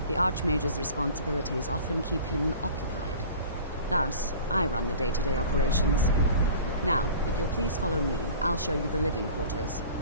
the Archmage's responsibilities often keep him occupied. Thus, I run the day-to-day operations. Now, if you'll please follow me, I'll show you the living quarters.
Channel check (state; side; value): inverted; both; correlation -0.42